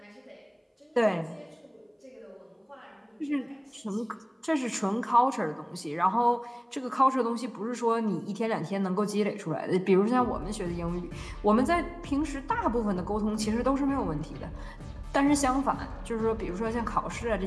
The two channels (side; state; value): both; identical; correlation 1.00